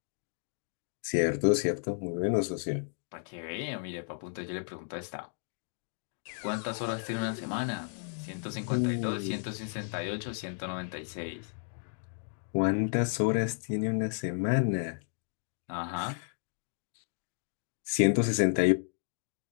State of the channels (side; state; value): right; silent; digital silence